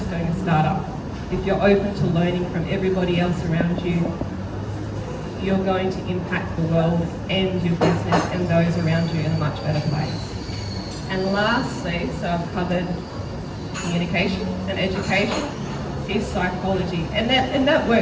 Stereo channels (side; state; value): both; identical; correlation 1.00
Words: doing a startup. If you're open to learning from everybody else around you, you're going to impact the world and your business and those around you in a much better place. And lastly, so I've covered communication and education, is psychology. And that